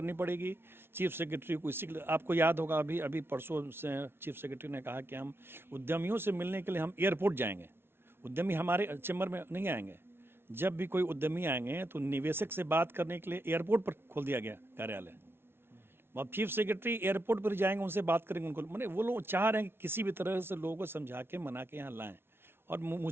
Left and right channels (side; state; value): left; late; 0.11 ms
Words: पड़ेगी, चीफ सेक्रेटरी को। इसी आपको याद होगा अभी परसों से चीफ सेक्रेटरी ने कहा कि हम उद्यमियों से मिलने के लिए हम एयरपोर्ट जाएंगे, उद्यमी हमारे चैम्बर में नहीं आएंगे। जब भी कोई उद्यमी आएंगे तो निवेशक से बात करने के लिए एयरपोर्ट पर खोल दिया गया कार्यालय। अब चीफ सेक्रेटरी एयरपोर्ट पर जाएंगे, उनसे बात करेंगे, उनको मैंने वो लोग चाह रहे हैं कि किसी भी तरह से लोगों को समझा के मना के यहाँ लाएं। और